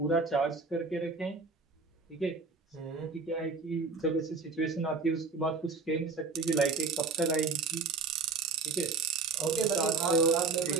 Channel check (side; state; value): left; quieter; 4.2 dB